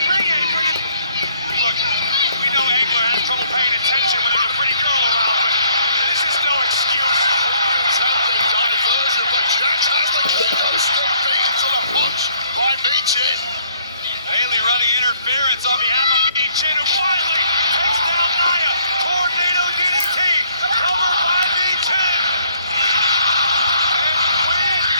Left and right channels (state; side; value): inverted; both; correlation -0.64